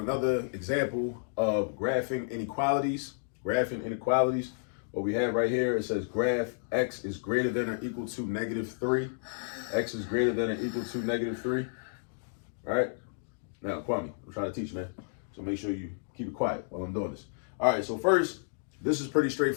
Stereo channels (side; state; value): right; silent; digital silence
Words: example of graphing inequalities. What we have right here, it says graph x is greater than or equal to -3. X is greater than or equal to -3. All right. Now, Kwame, I'm trying to teach, man. So make sure you keep it quiet while I'm doing this. All right, so first, this is pretty